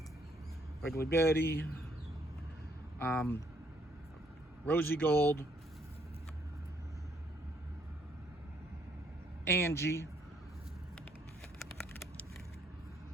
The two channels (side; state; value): both; normal; correlation 0.68